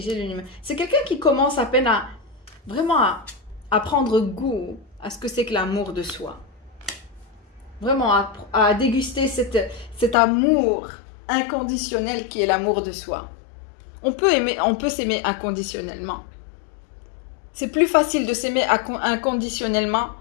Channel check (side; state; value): right; drops out; at 10.2 s